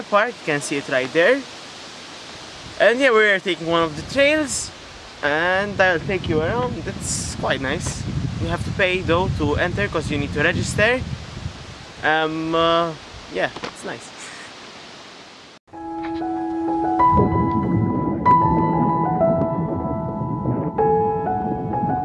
Park. You can see it right there. And yeah, we're taking one of the trails and I'll take you around. It's quite nice. You have to pay though to enter because you need to register. Yeah, it's nice.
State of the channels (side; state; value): both; identical; correlation 1.00